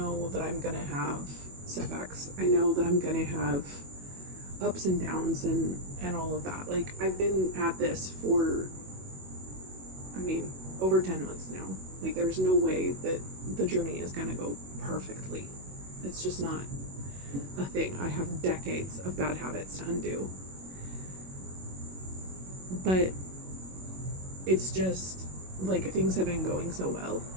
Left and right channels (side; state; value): left; late; 21 ms